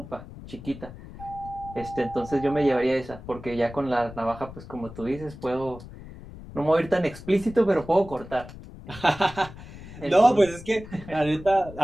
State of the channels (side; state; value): left; noise; rumble, 15 dB below the sound